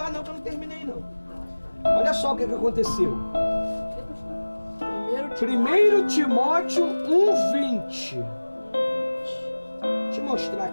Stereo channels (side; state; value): both; inverted; correlation -1.00